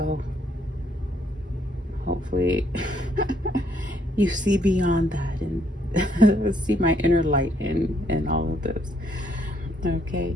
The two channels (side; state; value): both; normal; correlation 0.69